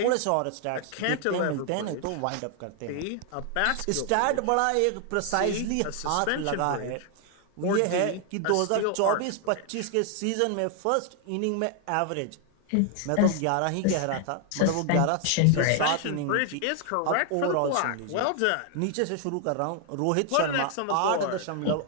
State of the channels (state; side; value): different; both; correlation 0.00